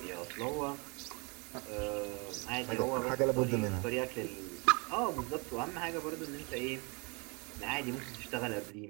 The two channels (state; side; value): quieter; left; 31.3 dB